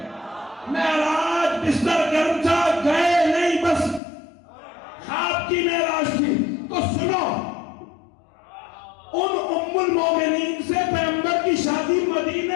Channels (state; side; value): drops out; right; at 4.0 s